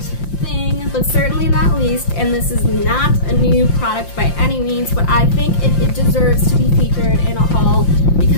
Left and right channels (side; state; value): right; late; 5.7 ms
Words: thing, but certainly not least, and this is not a new product by any means, but I think it deserves to be featured in a haul